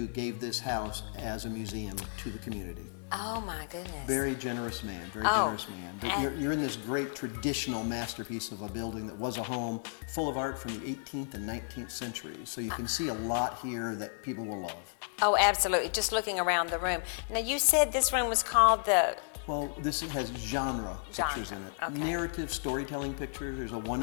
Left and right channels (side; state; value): right; silent; 56 dB below the other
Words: gave this house as a museum to the community. Oh my goodness. Very generous man, very generous man. But you're in this great traditional masterpiece of a building that was a home full of art from the 18th and 19th centuries. So you can see a lot here that people will love. Oh, absolutely. Just looking around the room. Now, you said this room was called the... Well, this has genre pictures in it. Okay. Narrative storytelling pictures. There's a